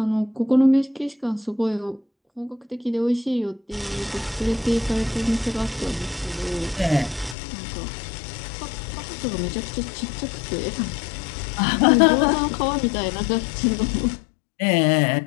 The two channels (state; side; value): drops out; right; at 7.4 s